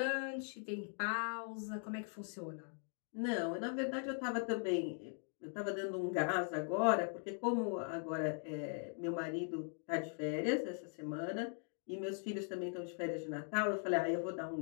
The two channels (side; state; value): right; silent; 51 dB below the other